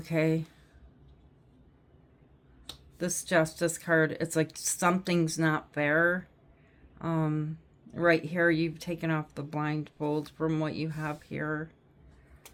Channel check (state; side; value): identical; both; correlation 1.00